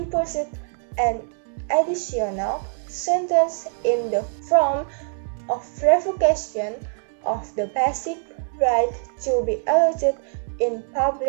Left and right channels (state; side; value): silent; left; digital silence